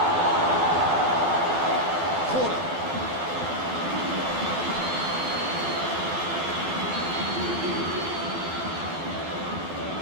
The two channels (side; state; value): left; late; 12 ms